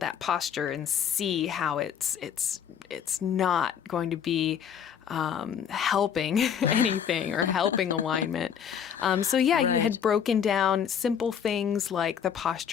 posture and see how it's not going to be helping anything or helping alignment. You had broken down simple things like the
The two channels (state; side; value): quieter; right; 8.1 dB